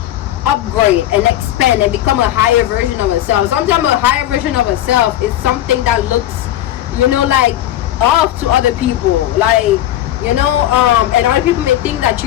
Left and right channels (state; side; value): quieter; right; 13.0 dB